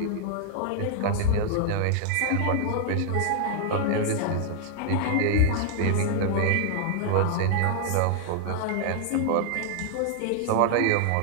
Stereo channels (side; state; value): both; different; correlation 0.00